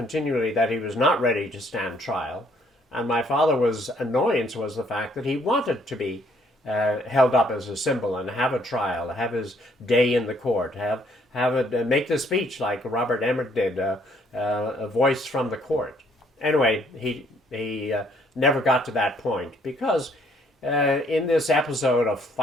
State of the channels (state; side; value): normal; both; correlation 0.65